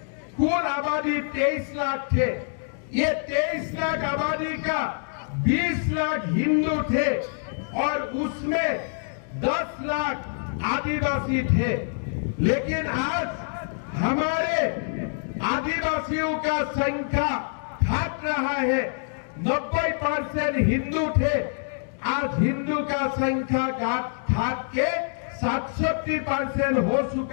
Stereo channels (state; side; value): silent; right; digital silence